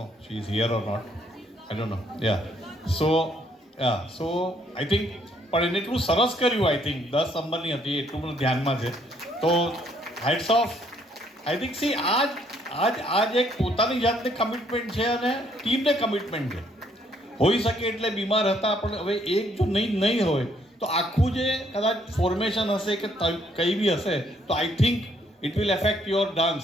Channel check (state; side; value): normal; both; correlation 0.68